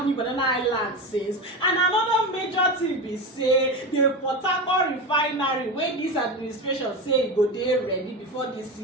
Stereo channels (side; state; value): both; normal; correlation 0.21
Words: New Banana Highland since. And another major thing be say the Port-Harcourt refinery wey this administration say e go dey ready before this